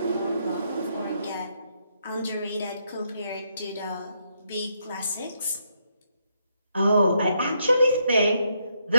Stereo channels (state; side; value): inverted; both; correlation -0.76